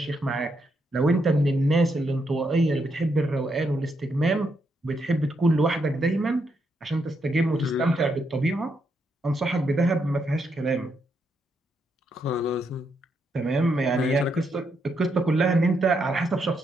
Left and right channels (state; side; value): normal; both; correlation 0.79